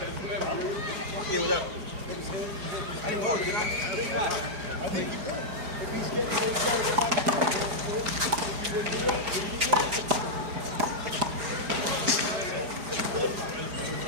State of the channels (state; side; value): late; left; 4.9 ms